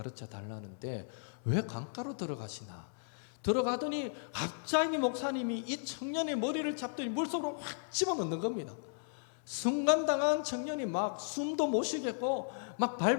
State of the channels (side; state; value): right; silent; 54 dB below the other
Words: 달라는데 왜 강가로 들어가시나? 들어가더니 갑자기 목사님이 이 청년의 머리를 잡더니 물속으로 확 집어넣는 겁니다. 순간당한 청년이 막 숨도 못 쉬겠고 막